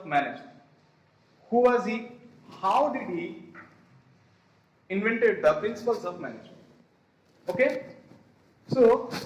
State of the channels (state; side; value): identical; both; correlation 1.00